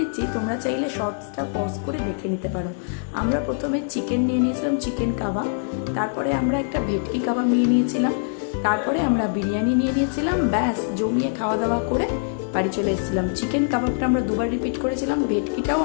তোমরা চাইলে শর্টসটা পজ করে দেখে নিতে পারো। আমরা প্রথমে চিকেন নিয়ে নিয়েছিলাম, চিকেন কাবাব। তারপরে আমরা একটা ভেটকি কাবাব নিয়ে নিয়েছিলাম। তারপরে আমরা বিরিয়ানি নিয়ে নিয়েছিলাম। ব্যাস জমিয়ে খাওয়া দাওয়া করে বাড়ি চলে এসেছিলাম। চিকেন কাবাবটা আমরা 2বার রিপিট করেছিলাম, ভেটকিটাও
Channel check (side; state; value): right; silent; digital silence